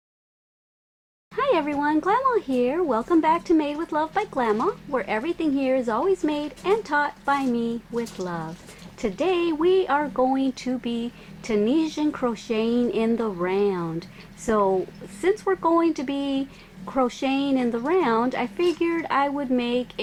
Hi everyone, Glama here. Welcome back to Made with Love by Glama, where everything here is always made and taught by me with love. Today we are going to be Tunisian crocheting in the round. So since we're going to be crocheting in the round, I figured I would make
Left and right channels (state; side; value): identical; both; correlation 1.00